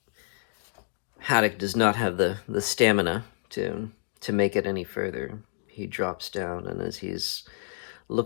Haddock does not have the stamina to make it any further. He drops down, and as he's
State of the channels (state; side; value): silent; right; digital silence